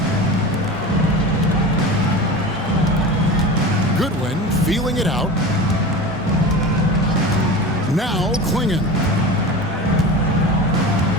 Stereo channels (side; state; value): both; normal; correlation 0.31